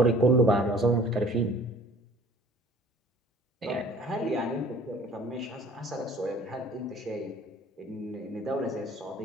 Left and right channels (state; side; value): normal; both; correlation 0.51